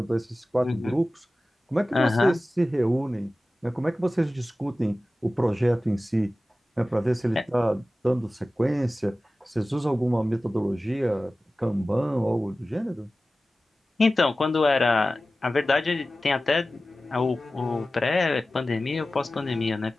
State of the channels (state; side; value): normal; both; correlation 0.96